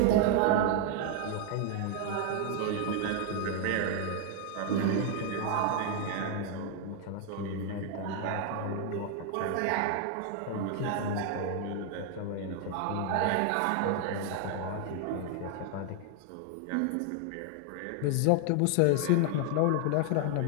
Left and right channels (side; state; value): both; different; correlation 0.00